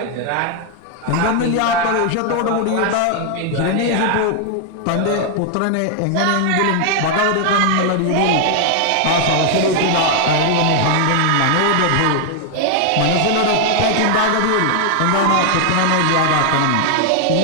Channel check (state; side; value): different; both; correlation 0.00